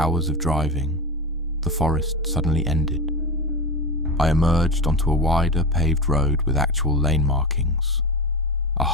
of driving, the forest suddenly ended. I emerged onto a wider paved road with actual lane markings. A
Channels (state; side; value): normal; both; correlation 0.20